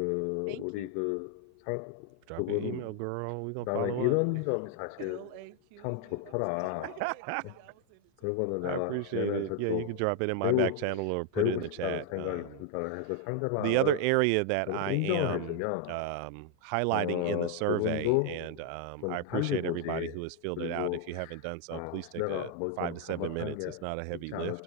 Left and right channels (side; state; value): both; different; correlation 0.01